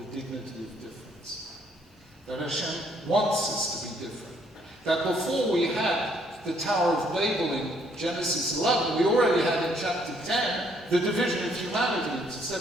dignity of difference. That Hashem wants us to be different. That before we had the Tower of Babel in Genesis 11, we already had in chapter 10 the division of humanity into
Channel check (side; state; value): both; normal; correlation 0.67